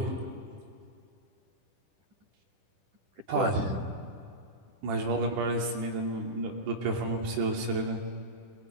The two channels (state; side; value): late; left; 10 ms